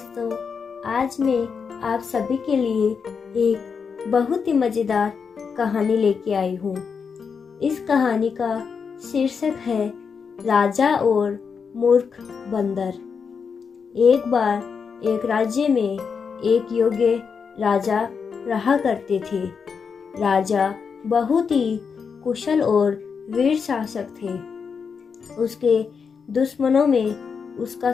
आज मैं आप सभी के लिए एक बहुत ही मज़ेदार कहानी लेके आई हूँ। इस कहानी का शीर्षक है राजा और मूर्ख बंदर। एक बार एक राज्य में एक योग्य राजा रहा करते थे। राजा बहुत ही कुशल और वीर शासक थे। उसके दुश्मनों में उसका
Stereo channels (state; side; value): quieter; right; 6.0 dB